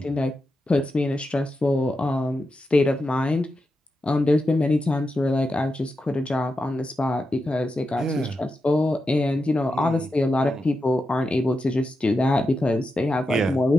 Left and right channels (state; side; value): normal; both; correlation 0.88